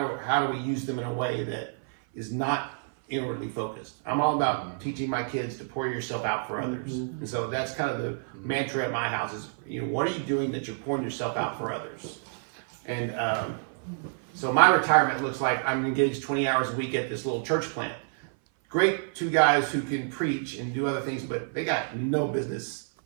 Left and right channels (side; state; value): left; silent; 56 dB below the other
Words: do we use them in a way that is not inwardly focused. I'm all about teaching my kids to pour yourself out for others. And so that's kind of the mantra at my house is, what are you doing that you're pouring yourself out for others? And so my retirement looks like I'm engaged 20 hours a week at this little church plant. Great two guys who can preach and do other things, but they got no business